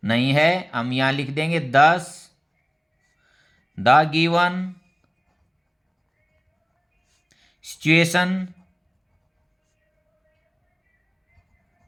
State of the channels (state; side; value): identical; both; correlation 1.00